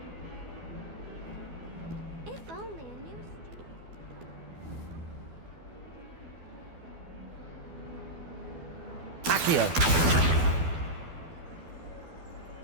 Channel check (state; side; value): late; left; 12 ms